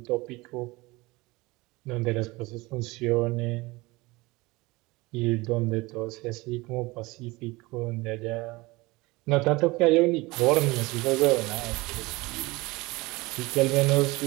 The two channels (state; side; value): quieter; left; 22.4 dB